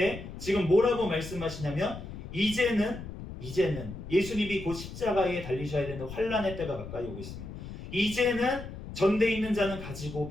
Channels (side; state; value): left; noise; rumble, 11 dB below the sound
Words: 지금 뭐라고 말씀하시냐면 이제는 예수님이 곧 십자가에 달리셔야 되는 환란의 때가 가까이 오고 있습니다. 이제는 전대 있는 자는 가지고